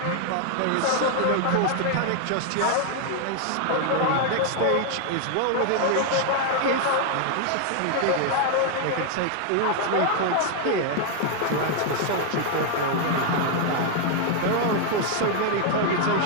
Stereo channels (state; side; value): different; both; correlation 0.00